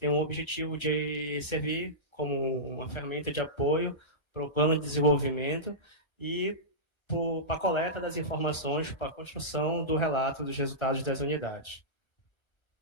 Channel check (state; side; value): late; right; 1.2 ms